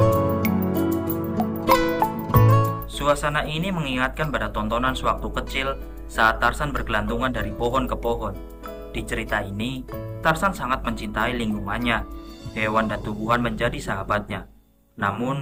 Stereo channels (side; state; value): both; identical; correlation 1.00